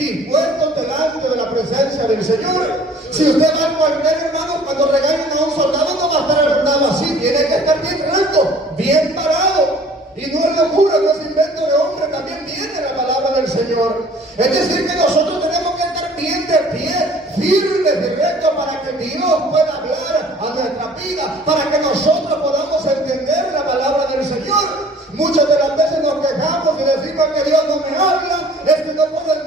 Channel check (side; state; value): both; normal; correlation 0.52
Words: delante de la presencia del Señor. Si usted va al cuartel, hermano, cuando regañan a un soldado, no va a estar sentado así, tiene que estar bien recto, bien parado. Y no es locura, no es invento de hombre, también viene la palabra del Señor. Es decir, que nosotros tenemos que estar bien de pie, firmes y rectos, para que Dios pueda hablar a nuestra vida, para que nosotros podamos entender la palabra del Señor. Muchas de las veces nos quejamos y decimos que Dios no me habla, es que no puedo